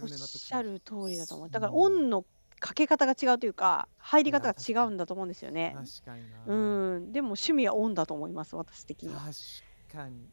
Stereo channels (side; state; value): both; inverted; correlation -1.00